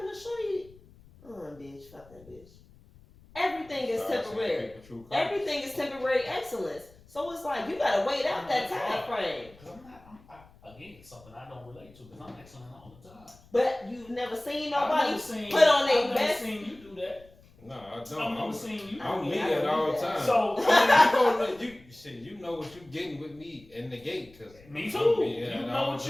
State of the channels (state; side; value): noise; left; rumble, 25 dB below the sound